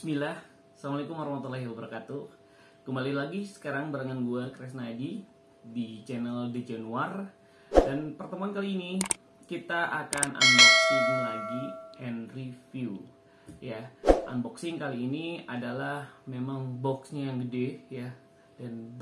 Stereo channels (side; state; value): both; identical; correlation 1.00